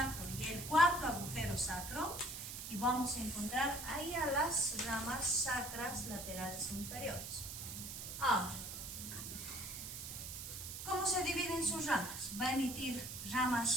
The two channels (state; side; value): noise; right; hiss, 8 dB below the sound